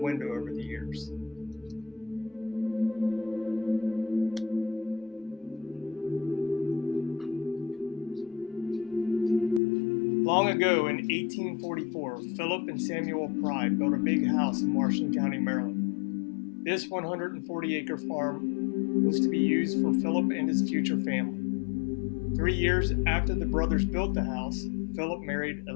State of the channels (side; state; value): right; drops out; at 9.6 s